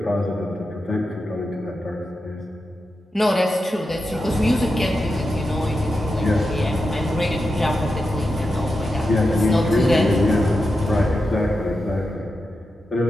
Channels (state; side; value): normal; both; correlation 0.89